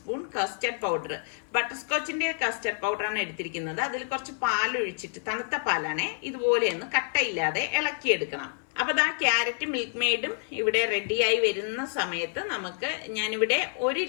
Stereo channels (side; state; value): right; silent; 59 dB below the other